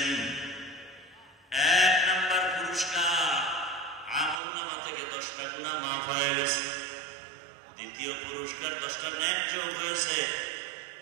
1 নাম্বার পুরস্কার, আমলনামা থেকে 10টা গুনাহ মাফ হয়ে গেছে। দ্বিতীয় পুরস্কার 10টা নেক যোগ হয়েছে।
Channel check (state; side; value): drops out; left; at 4.4 s